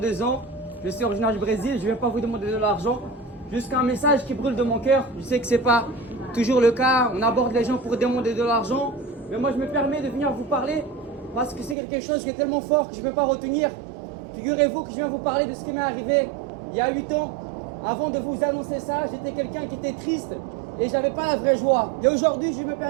ans. Je suis originaire du Brésil. Je ne viens pas vous demander de l'argent. Juste un message qui brûle de mon cœur. Je sais que ce n'est pas toujours le cas. On aborde les gens pour demander de l'argent. Mais moi, je me permets de venir vous parler parce que c'est quelque chose qui est tellement fort que je ne peux pas retenir. Figurez-vous que je viens vous parler de ce qui m'est arrivé il y a 8 ans. Avant de vous annoncer ça, j'étais quelqu'un qui était triste et j'avais pas la vraie joie. Et aujourd'hui, je me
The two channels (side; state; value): left; drops out; at 11.8 s